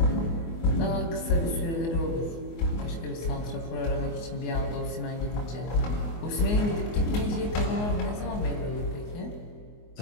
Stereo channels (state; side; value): late; right; 24 ms